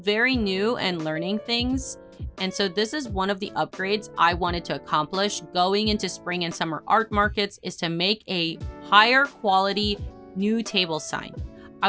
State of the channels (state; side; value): identical; both; correlation 1.00